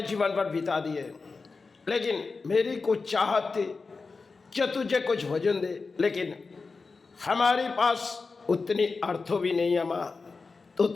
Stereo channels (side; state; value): right; quieter; 4.3 dB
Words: जीवन पर बिता दिए, लेकिन मेरी कुछ चाहत थी कि तुझे कुछ भोजन दे, लेकिन हमारे पास उतनी अर्थों भी नहीं है माँ। तू